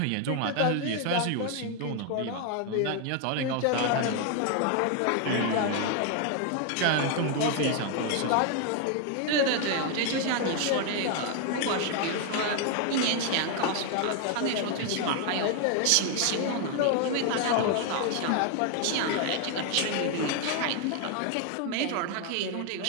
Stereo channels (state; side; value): different; both; correlation 0.01